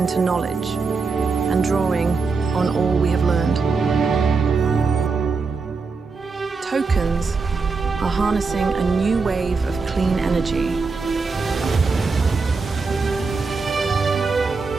knowledge and drawing on all we have learned. Tokens are harnessing a new wave of clean energy.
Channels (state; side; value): quieter; left; 4.5 dB